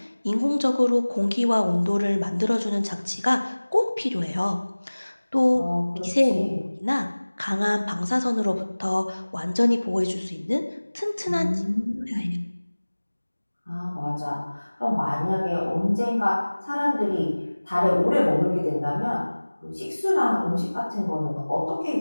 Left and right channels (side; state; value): both; inverted; correlation -1.00